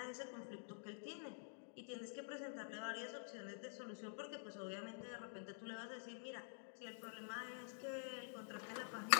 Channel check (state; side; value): silent; right; digital silence